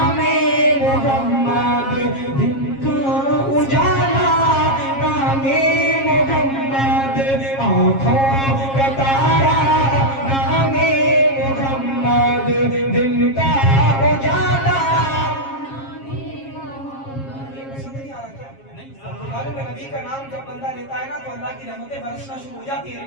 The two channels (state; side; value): late; right; 7.4 ms